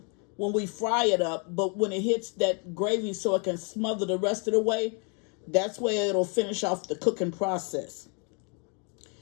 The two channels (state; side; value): quieter; right; 37.0 dB